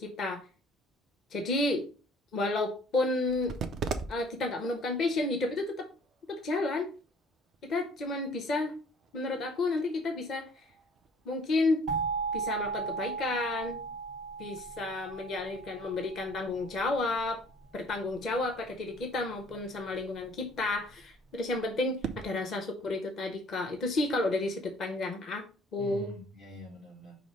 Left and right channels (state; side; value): normal; both; correlation 0.54